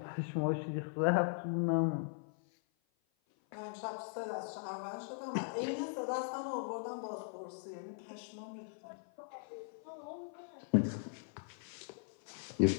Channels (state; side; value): silent; right; 52 dB below the other